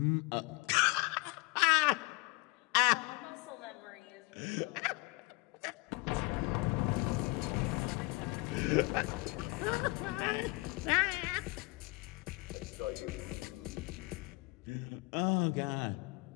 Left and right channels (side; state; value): right; quieter; 24.4 dB